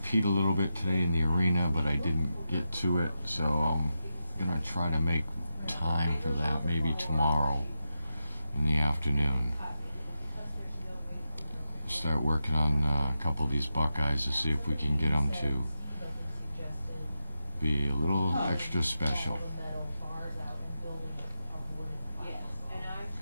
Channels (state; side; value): inverted; both; correlation -0.89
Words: Pete a little bit today in the arena, but I didn't get to it. So I'm going to try to make time for that maybe tomorrow in the afternoon. Start working on a couple of these Buckeyes to see if we can get them to be a little extra special.